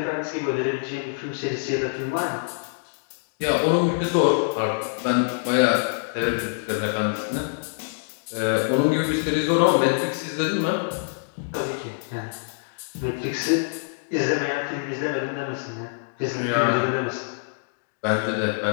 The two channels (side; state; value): right; silent; digital silence